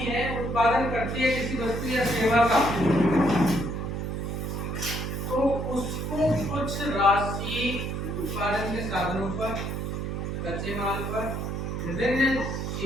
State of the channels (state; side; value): noise; right; hum, 3 dB below the sound